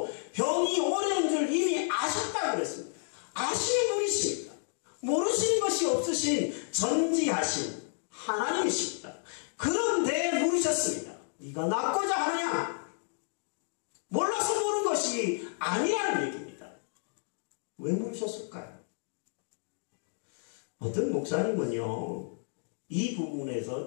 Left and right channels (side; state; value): right; silent; digital silence